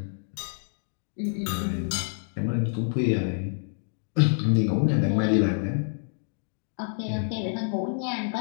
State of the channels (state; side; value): silent; right; digital silence